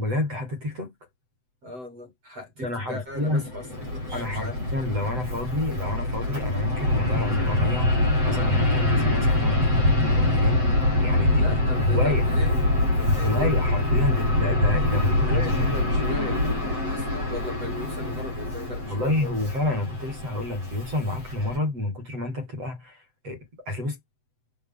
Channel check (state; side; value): late; left; 7.9 ms